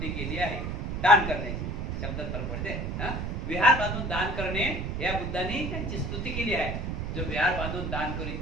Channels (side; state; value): right; noise; rumble, 3 dB below the sound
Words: केली आहे. दान करण्याची शब्दात फरक पडते. विहार बांधून दान करणे या बुद्धांनी त्यांची स्तुती केली आहे. जो विहार बांधून दान करीत